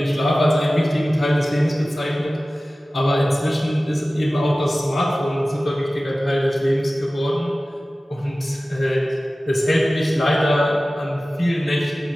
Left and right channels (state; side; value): normal; both; correlation 0.96